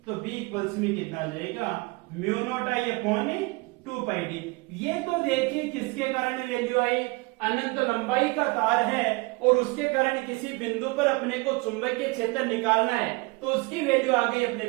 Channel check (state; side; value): quieter; left; 25.7 dB